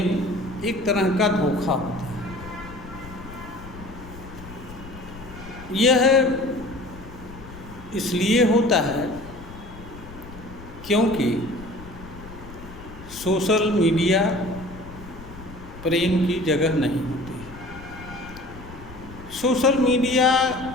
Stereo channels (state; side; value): noise; left; rumble, 16 dB below the sound